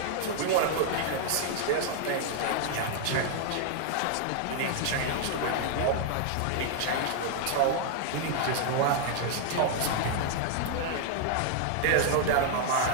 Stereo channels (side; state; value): both; different; correlation 0.00